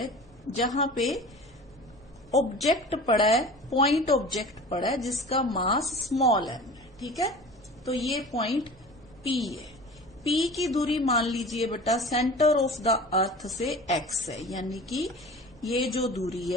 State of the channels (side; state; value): left; noise; hum, 29 dB below the sound